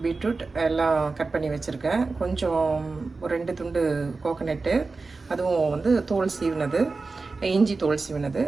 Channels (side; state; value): left; quieter; 3.9 dB